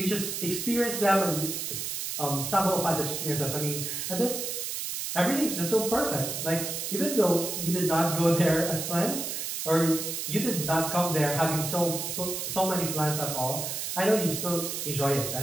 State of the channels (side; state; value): right; noise; hiss, 4 dB below the sound